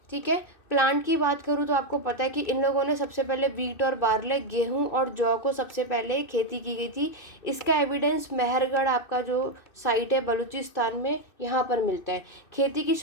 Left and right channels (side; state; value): right; late; 2.6 ms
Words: ठीक है। प्लांट की बात करूँ तो आपको पता है कि इन लोगों ने सबसे पहले वीट और बार्ले, गेहूं और जौ को सबसे पहले खेती की गई थी। इसका एविडेंस मेहरगढ़ आपका जो साइट है बलूचिस्तान में, यहाँ पर मिलता है। खेती की